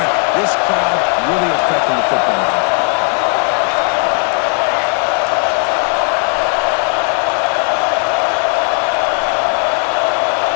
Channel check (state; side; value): quieter; right; 39.4 dB